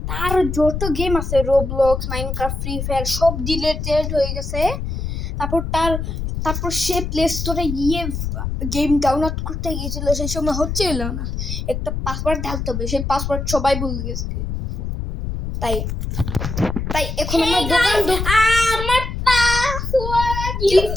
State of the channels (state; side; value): noise; left; rumble, 4 dB below the sound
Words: তার যত গেম আছে, রোবলক্স, মাইনক্রাফট, ফ্রি ফায়ার সব ডিলেটেড হয়ে গেছে। তারপর সে প্লে স্টোরে গিয়ে গেম ডাউনলোড করতে গিয়েছিল, সেই সময় হচ্ছিল না। একটা পাসওয়ার্ড ঢালতে হবে, সেই পাসওয়ার্ড সবাই ভুলে গেছে। তাই এখন আমার আমার পাসওয়ার্ড,